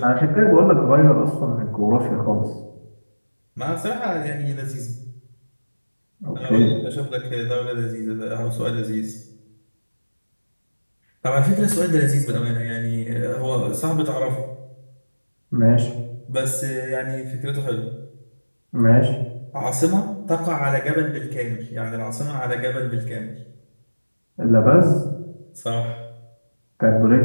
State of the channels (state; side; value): inverted; both; correlation -1.00